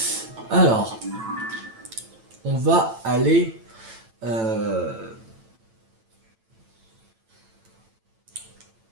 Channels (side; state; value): left; late; 9.0 ms